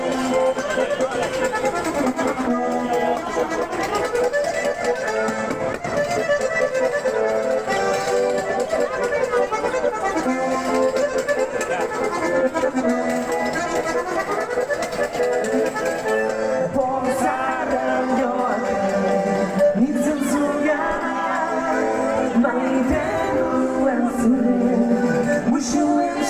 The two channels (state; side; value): identical; both; correlation 1.00